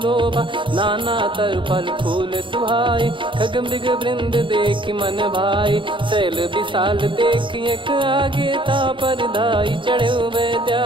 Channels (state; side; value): late; left; 0.24 ms